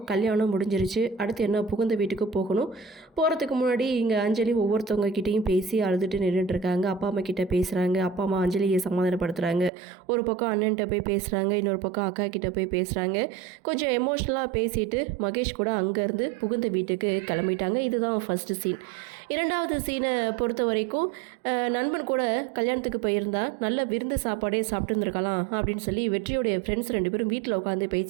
கல்யாணம் முடிஞ்சிருச்சு, அடுத்து என்ன புகுந்த வீட்டுக்கு போகணும். போகிறதுக்கு முன்னாடி இங்கே அஞ்சலி ஒவ்வொருத்தவங்க கிட்டேயும் பேசி அழுதுட்டு நின்றுட்டுருக்காங்க. அப்பா அம்மா கிட்டே பேசுகிறாங்க. அப்பா அம்மா அஞ்சலியை சமாதானப்படுத்துகிறாங்க. ஒரு பக்கம் அண்ணன்கிட்ட போய் பேசுகிறாங்க, இன்னொரு பக்கம் அக்கா கிட்டே போய் பேசுகிறாங்க. கொஞ்சம் எமோஷ்னலாக பேசிட்டு மகேஷ் கூட அங்கேருந்து புகுந்த வீட்டுக்கு கிளம்பிட்டாங்க. இதுதான் ஃபஸ்ட்டு சீன். இரண்டாவது சீனை பொறுத்த வரைக்கும் நண்பன் கூட கல்யாணத்துக்கு போயிருந்தா நல்ல விருந்து சாப்பாடே சாப்பிட்டுருந்துருக்கலாம் அப்படின்னு சொல்லி வெற்றியுடைய ஃப்ரெண்ட்ஸ் 2 பேரும் வீட்டில் உட்காந்து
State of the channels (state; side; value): drops out; left; at 9.7 s